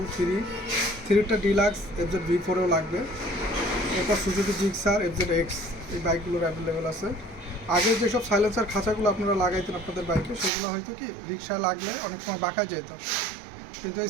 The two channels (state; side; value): drops out; left; at 10.5 s